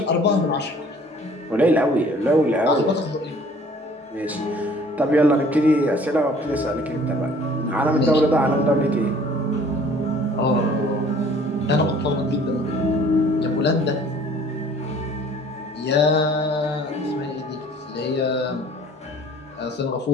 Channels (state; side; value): normal; both; correlation 0.53